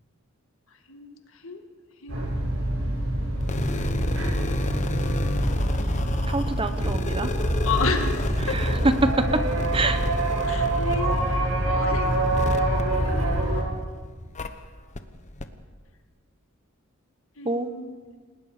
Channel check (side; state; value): both; normal; correlation 0.54